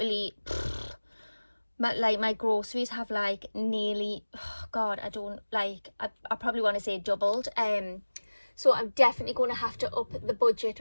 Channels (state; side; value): inverted; both; correlation -1.00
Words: my groceries have like nearly, oh God, I don't like, I probably want to say doubled. So I'm definitely going to have to up the